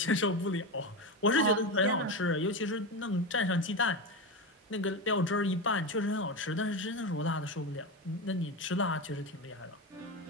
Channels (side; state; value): both; normal; correlation 0.17